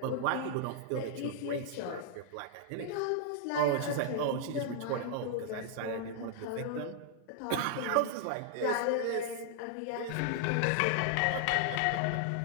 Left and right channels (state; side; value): different; both; correlation -0.01